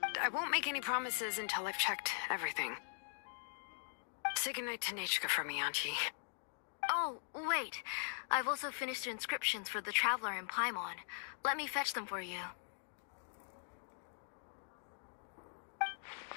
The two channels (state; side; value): silent; right; digital silence